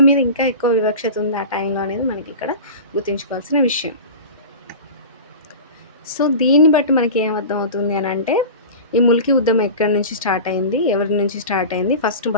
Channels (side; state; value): both; inverted; correlation -0.32